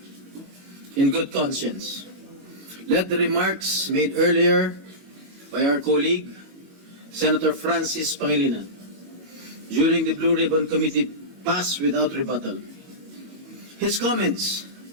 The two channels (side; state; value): left; late; 22 ms